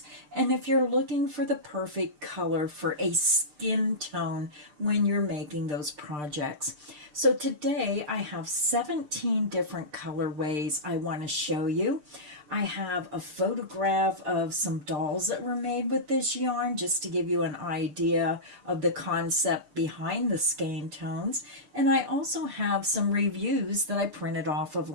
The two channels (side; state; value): left; late; 6.7 ms